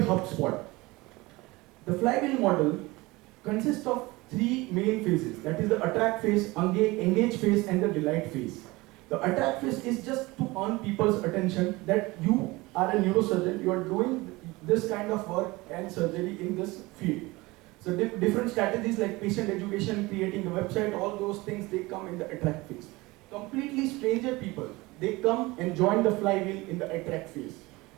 The flywheel model consists of 3 main phases. That is the attract phase, engage phase, and the delight phase. The attract phase is just to earn people's attention that you are a neurosurgeon, you are doing this kind of work and surgery in this field. So different strategies like patient education, creating a website, all those things, they come in the attract phase. Completely stranger people, they come and join the flywheel in the attract phase.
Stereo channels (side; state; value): left; quieter; 21.9 dB